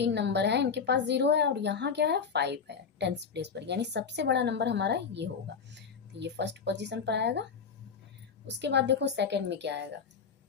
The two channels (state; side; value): quieter; right; 6.1 dB